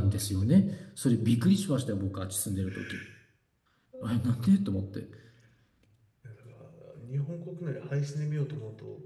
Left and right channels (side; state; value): both; identical; correlation 1.00